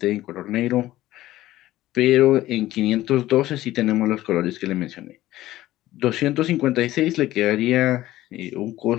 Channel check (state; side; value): quieter; right; 15.4 dB